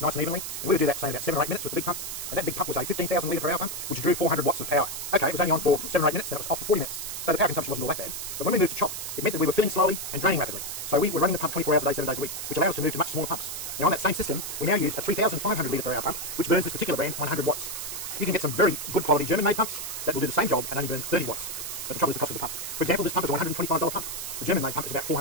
nice and evenly. And we would do that, say, in about 7 or 8 minutes with the big pump. And that big pump was a 15,000 litre per hour pump, which drew 400 watts of power. Okay, it was only on for 7 or 8 minutes, then it was off for 40 minutes. So the power consumption wasn't all that bad. But when we moved to chop, it meant that we were filling slowly and draining rapidly. So we were running the pump 24 hours a day, 7 days a week, which allowed us to move to much smaller pumps. Now on that same system, we now use a 3,500 litre per hour pump, which burns this particular brand 100 watts. You can get some very good quality German-made pumps that will do the same job and only burn 30 watts. But the trouble is the cost of the pump. For example, this pump is a $125 pump. The German-made pump is about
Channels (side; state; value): right; noise; hiss, 6 dB below the sound